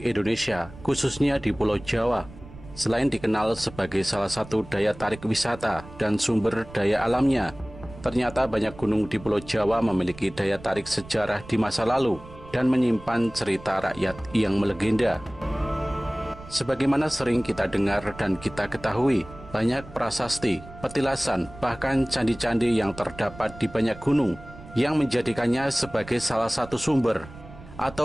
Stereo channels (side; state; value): right; noise; rumble, 17 dB below the sound